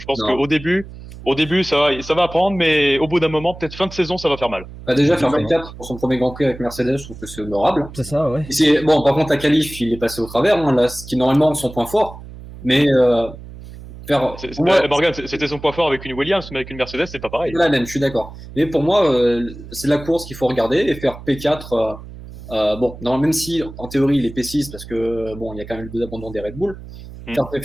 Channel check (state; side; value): noise; right; hum, 15 dB below the sound